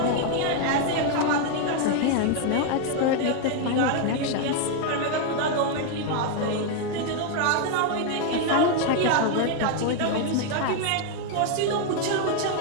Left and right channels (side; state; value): both; different; correlation 0.00